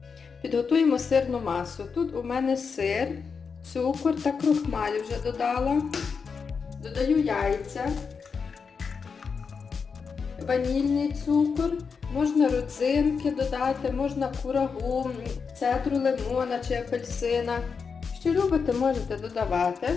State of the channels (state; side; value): quieter; right; 5.6 dB